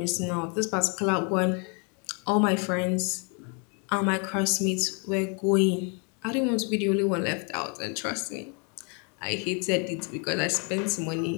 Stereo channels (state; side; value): quieter; right; 36.5 dB